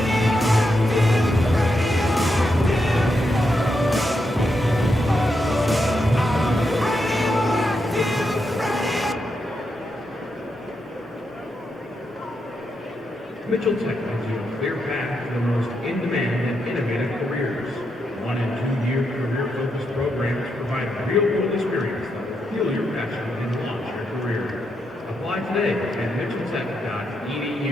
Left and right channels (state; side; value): normal; both; correlation 0.83